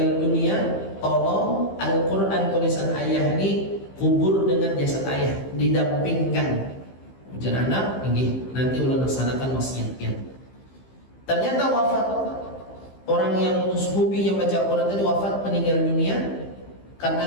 dunia, tolong Al-Quran tulisan ayah ini kubur dengan jasad ayah, didampingkan. Ujar anak, ini nanti ulah laksanakan wasiatnya. Ternyata wafat orang yang hobi yang baca Al-Quran tadi, wafat meninggal dunia.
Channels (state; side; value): late; right; 15 ms